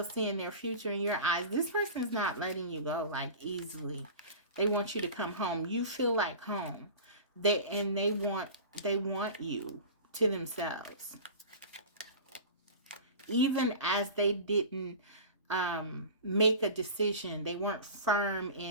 their future in your eyes, this person's not letting you go like easily. They want you to come home. You feel like home. They want you to themselves. Even as they didn't make a decision, they weren't firm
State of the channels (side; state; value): both; inverted; correlation -0.35